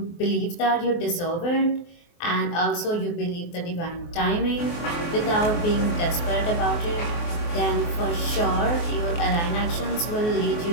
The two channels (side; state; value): right; late; 24 ms